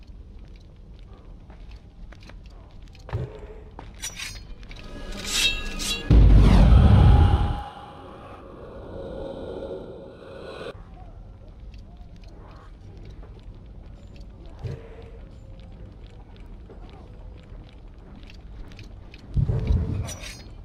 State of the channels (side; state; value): both; identical; correlation 1.00